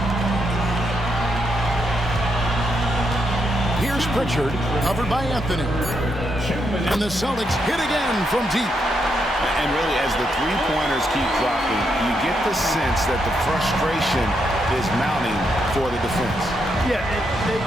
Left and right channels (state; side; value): normal; both; correlation 0.79